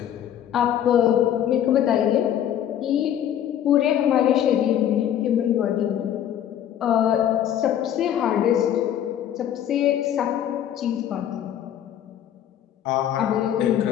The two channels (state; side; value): quieter; right; 10.4 dB